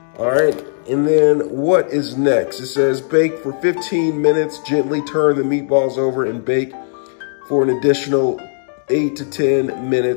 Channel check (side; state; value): right; silent; digital silence